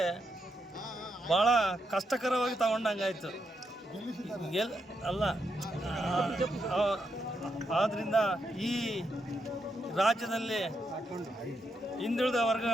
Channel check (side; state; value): both; normal; correlation 0.82